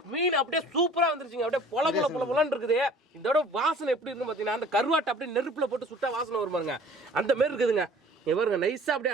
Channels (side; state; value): both; normal; correlation 0.48